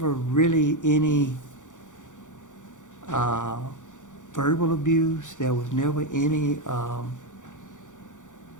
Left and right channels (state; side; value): late; right; 0.86 ms